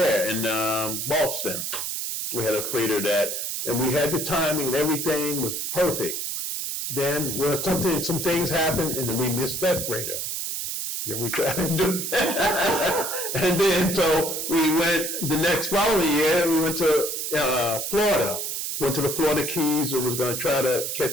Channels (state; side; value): noise; right; hiss, 3 dB below the sound